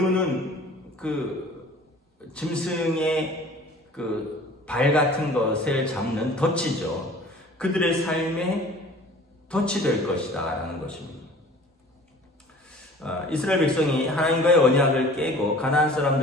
그 짐승의 그 발 같은 것을 잡는 덫이죠. 그들의 삶에 덫이 될 것이다 라는 것입니다. 이스라엘 백성이 하나님과의 언약을 깨고 가나안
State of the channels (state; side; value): normal; both; correlation 0.46